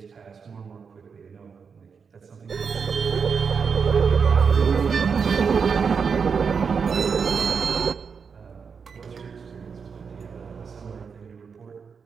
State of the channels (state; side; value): quieter; left; 5.9 dB